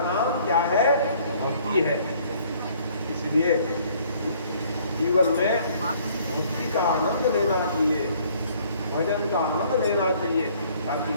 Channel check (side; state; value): both; inverted; correlation -0.59